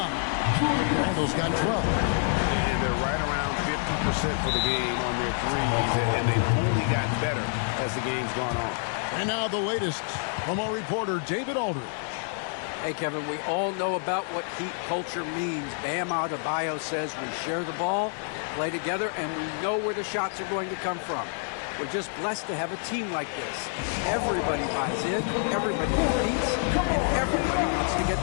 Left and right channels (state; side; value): silent; right; 60 dB below the other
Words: Randle's got 12. And they're right around 50% for the game on their threes, and they've only gotten better as the game's gone on. And now the latest from our reporter, David Aldridge. Hey, Kevin, we all know about what Heat culture means. Bam Adebayo says we share the ball, play together, and we know where the shots are going to come from. We're just blessed to have a team like this. Everybody buys in, everybody competes, and everybody wants to get